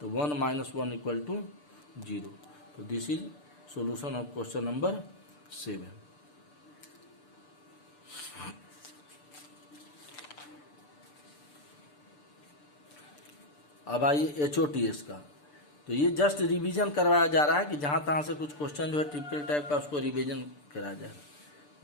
1 - 1 इक्वल टू 0। तो this is solution of question number 7। अब आइए HOTS का, तो ये जस्ट रिवीजन करवाया जा रहा है कि जहां तहां से कुछ क्वेश्चन जो है टिपिकल टाइप का उसको रिवीजन कराया जाएगा।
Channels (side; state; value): right; late; 6.8 ms